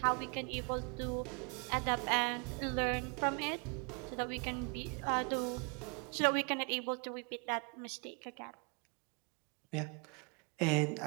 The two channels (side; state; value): left; quieter; 35.0 dB